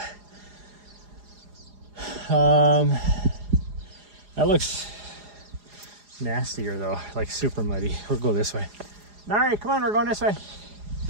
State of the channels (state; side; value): late; left; 4.9 ms